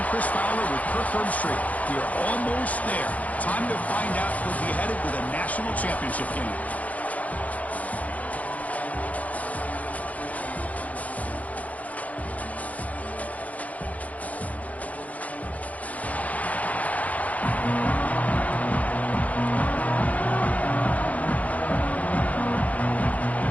Chris Fowler with Kirk Herbstreit. We are almost there. Time to find out who'll be headed to the national championship game.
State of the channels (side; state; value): right; late; 0.072 ms